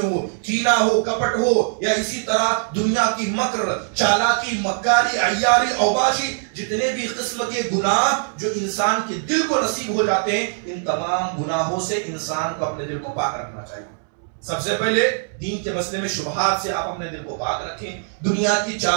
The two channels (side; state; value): left; silent; 62 dB below the other